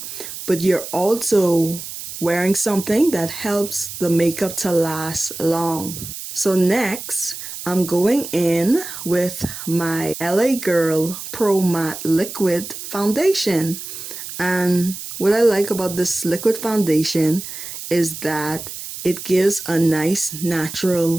but you're also wearing something that helps the makeup to last long. So next, I'm going in with my LA Girl Pro Matte Liquid Foundation. And what I like about this liquid foundation is that it gives a nice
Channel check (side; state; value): right; noise; hiss, 10 dB below the sound